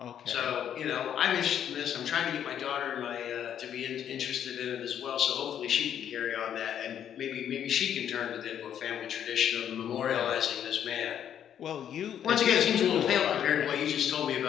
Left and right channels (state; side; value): quieter; right; 9.5 dB